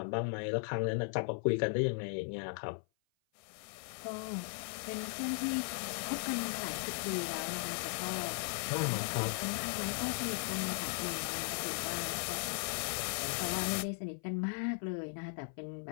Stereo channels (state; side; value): silent; right; 53 dB below the other